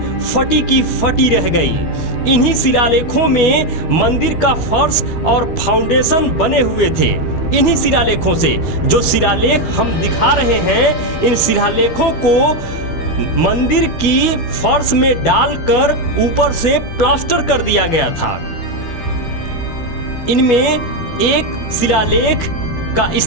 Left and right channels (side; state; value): right; late; 12 ms